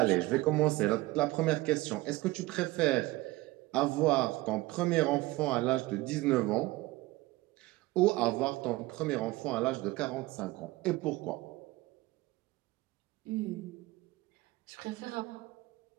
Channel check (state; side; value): quieter; left; 19.7 dB